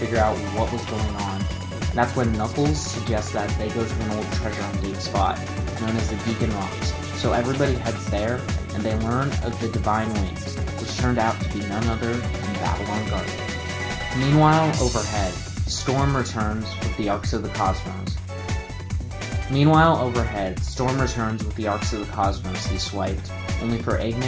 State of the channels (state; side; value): identical; both; correlation 1.00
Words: out what was going on. That's when Knuckles suggests that they go to an old treasure hunting spot, known as the Gigan Rocks, so everybody heads there, and they learn of the Divine Wings, which turned out to be none other than Babylon Garden. Meanwhile, overhead, Storm returns with the Arcs of the Cosmos he swiped, only for